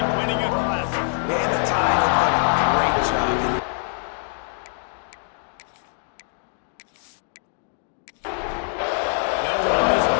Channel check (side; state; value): right; silent; 63 dB below the other